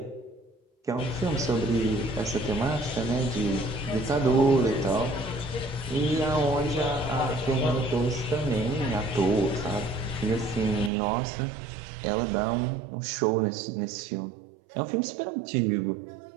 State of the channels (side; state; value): left; drops out; at 10.9 s